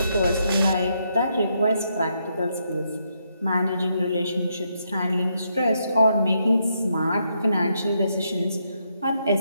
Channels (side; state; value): both; inverted; correlation -0.78